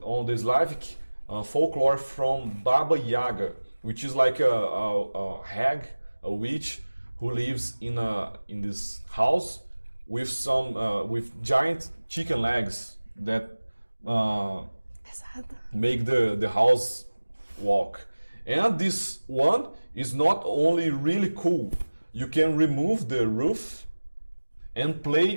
on the Slavic folklore from Baba Yaga, which is like a hag, a witch who lives in this house with some with giant chicken legs that make the house walk. And this one is not only really cool, you can remove the roof and play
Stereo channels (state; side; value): inverted; both; correlation -1.00